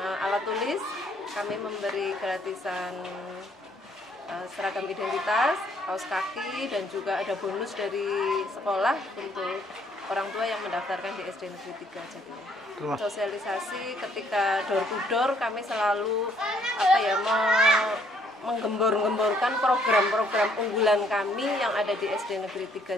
alat tulis. Kami memberi gratisan seragam identitas, kaos kaki, dan juga ada bonus dari sekolah untuk orang tua yang mendaftarkan di SD Negeri 3 Jatiluhur. Sosialisasi ketika door to door kami selalu menggembor-gemborkan program-program unggulan kami yang ada di SD Negeri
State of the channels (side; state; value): both; normal; correlation 0.66